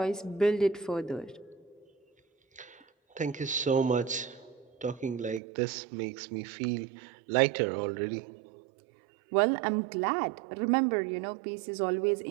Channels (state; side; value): drops out; left; at 5.4 s